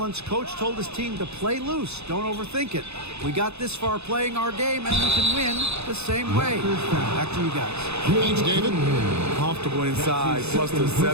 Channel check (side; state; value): left; late; 0.80 ms